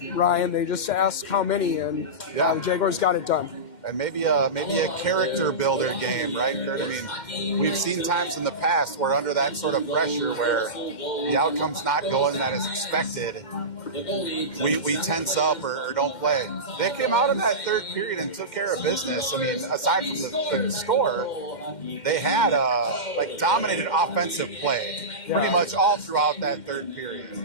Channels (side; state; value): right; late; 2.1 ms